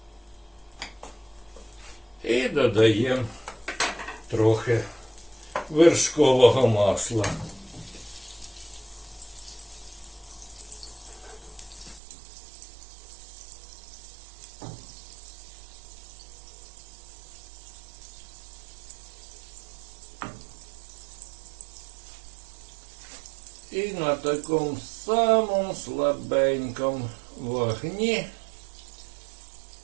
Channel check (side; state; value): left; drops out; at 12.0 s